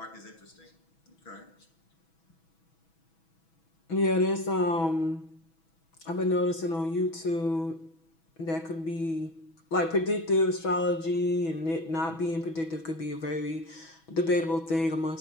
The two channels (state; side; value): late; right; 6.1 ms